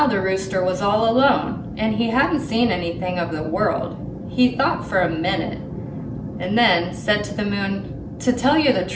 the rooster was all alone, and he hadn't seen anything of the world. He thought for a minute, and then said to the moon, "To tell you the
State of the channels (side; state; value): both; identical; correlation 1.00